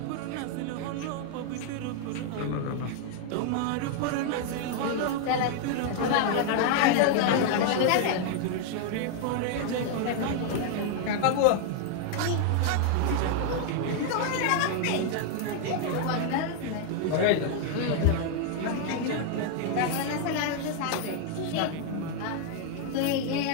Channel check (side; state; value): both; different; correlation 0.00